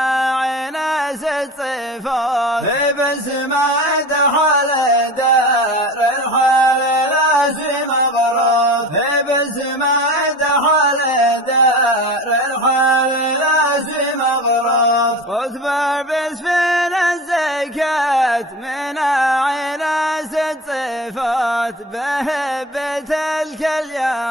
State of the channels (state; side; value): normal; both; correlation 0.33